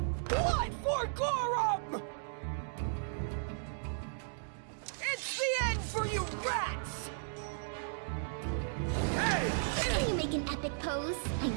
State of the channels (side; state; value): left; silent; digital silence